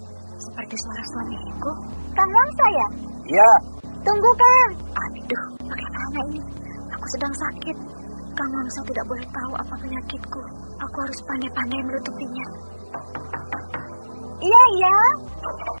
Seperti suara suamiku. Kang Wangsa ya? Iya. Tunggu, Kang. Aduh, bagaimana ini? Aku sedang sakit. Kang Wangsa tidak boleh tahu apa penyakitku. Aku harus pandai-pandai menutupinya. Iya.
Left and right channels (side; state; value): both; inverted; correlation -1.00